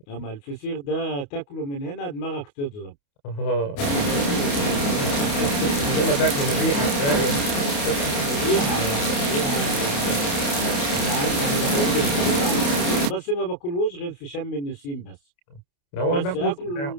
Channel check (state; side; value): late; right; 28 ms